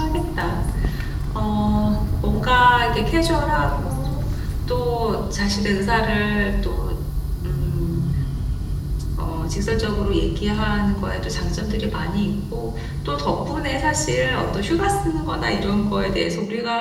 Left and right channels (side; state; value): both; identical; correlation 1.00